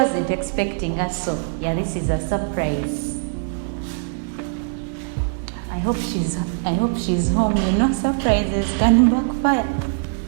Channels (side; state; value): left; silent; digital silence